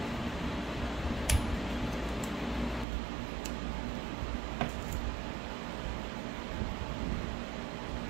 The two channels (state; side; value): drops out; left; at 2.9 s